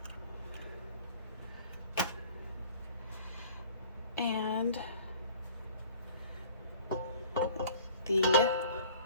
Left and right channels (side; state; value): both; inverted; correlation -0.49